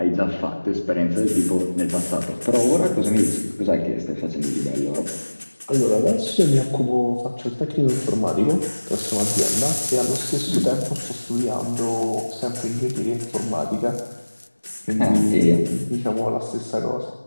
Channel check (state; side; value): inverted; both; correlation -1.00